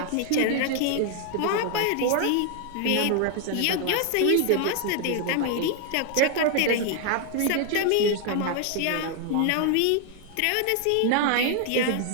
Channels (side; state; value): both; different; correlation 0.00